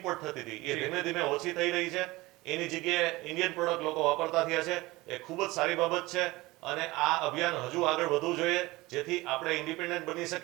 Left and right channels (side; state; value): left; quieter; 20.6 dB